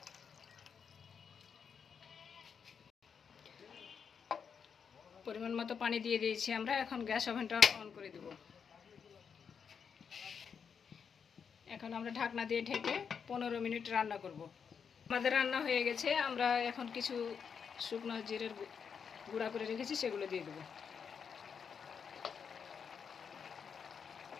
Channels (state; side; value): quieter; right; 6.7 dB